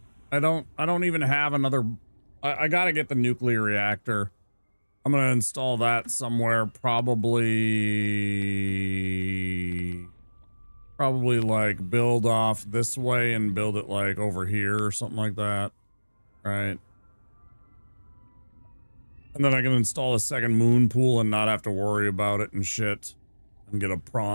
I don't even have another. I gotta get the nuclear reactor. I'm gonna install that somewhere, probably like build off this way and build it like over here or something like that. Right. And then I can install a second moon pool and not have to worry about it and shit. And get a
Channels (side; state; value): both; inverted; correlation -1.00